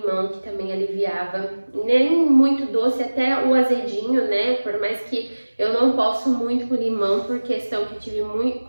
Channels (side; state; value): both; inverted; correlation -1.00